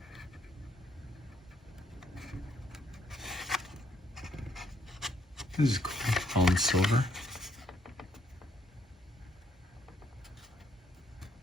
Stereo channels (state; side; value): normal; both; correlation 0.70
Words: This is cool, all in silver.